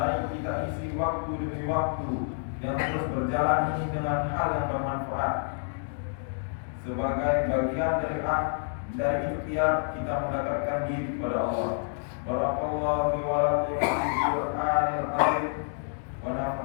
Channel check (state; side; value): silent; right; digital silence